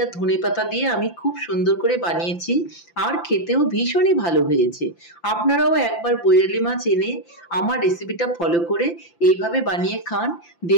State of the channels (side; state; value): right; late; 5.9 ms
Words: আর ধনেপাতা দিয়ে আমি খুব সুন্দর করে বানিয়েছি, আর খেতেও ভীষণই ভালো হয়েছে। আপনারাও একবার বৈরালি মাছ এনে আমার রেসিপিটা ফলো করে এইভাবে বানিয়ে খান,